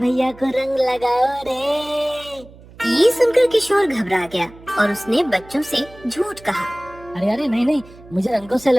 को रंग लगाओ रे। ये सुनकर किशोर घबरा गया और उसने बच्चों से झूठ कहा। अरे अरे नहीं नहीं, मुझे रंगों से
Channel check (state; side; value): noise; right; hum, 22 dB below the sound